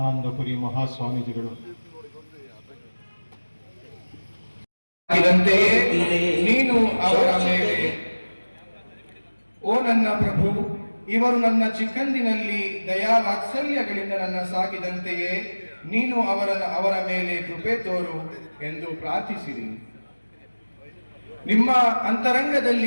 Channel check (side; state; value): both; inverted; correlation -1.00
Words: ಮಹಾಸ್ವಾಮೀಜಿಗಳು. ನೀನು ಅವರ ಮೇಲೆ, ಓ ನನ್ನ ಪ್ರಭು, ಇವರು ನನ್ನ ಚಿಕ್ಕಂದಿನಲ್ಲಿ ದಯಾ ವಾತ್ಸಲ್ಯಗಳಿಂದ ನನ್ನ ಸಾಕಿದಂತೆಯೇ ನೀನು ಅವರ ಮೇಲೆ ಕೃಪೆ ತೋರು ಎಂದು ಪ್ರಾರ್ಥಿಸಿರಿ. ನಿಮ್ಮ